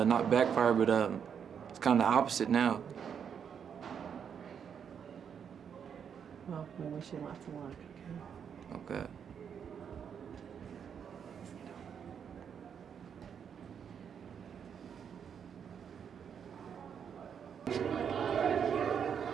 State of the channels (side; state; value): left; quieter; 7.6 dB